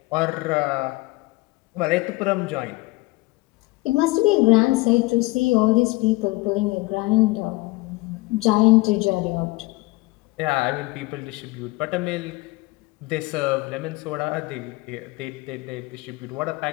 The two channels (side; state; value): right; quieter; 22.1 dB